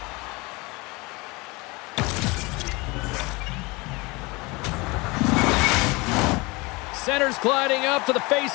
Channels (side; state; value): right; quieter; 25.1 dB